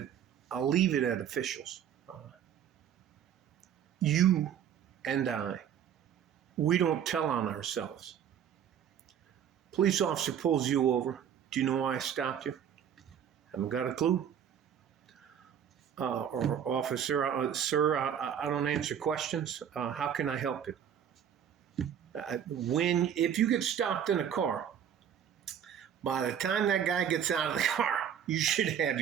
officials. You and I, we don't tell on ourselves. Police officer pulls you over. Do you know why I stopped you? Haven't got a clue. Or officer, sir, I don't answer questions. How can I help you? If you get stopped in a car, by the time that guy gets out of the car, you should have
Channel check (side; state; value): left; quieter; 8.9 dB